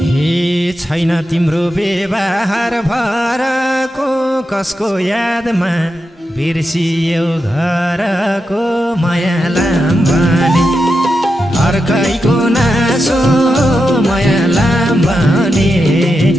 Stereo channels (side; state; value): both; normal; correlation 0.88